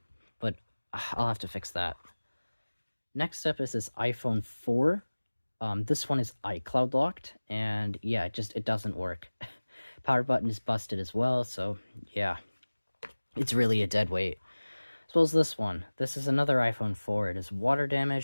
But I'll have to fix that. Next up is this iPhone 4. This one is iCloud locked, and yeah, it doesn't work. Power button is busted as well, so yeah, it's really a dead weight. As well as this one. This is another iPhone 4. It is water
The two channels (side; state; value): both; inverted; correlation -1.00